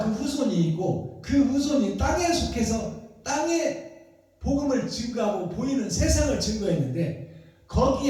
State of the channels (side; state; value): both; identical; correlation 1.00